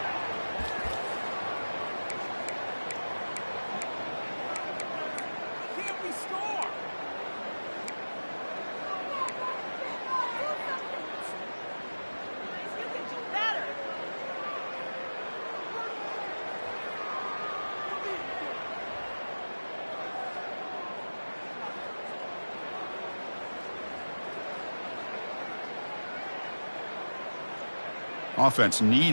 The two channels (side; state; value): both; inverted; correlation -1.00